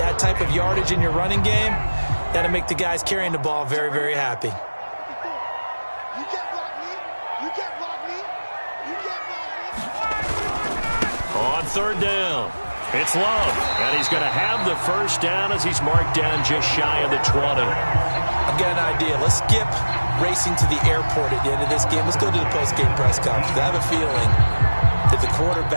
type of yardage in your running game, that'll make the guys carrying the ball very, very happy. You can't block me. On third down, it's Love. And he's going to have the first down as he's marked down just shy of the 20. I've got an idea. Let's skip racing to the airport at the end of this game. Let's go to the post-game press conference. I have a feeling that the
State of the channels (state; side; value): inverted; both; correlation -1.00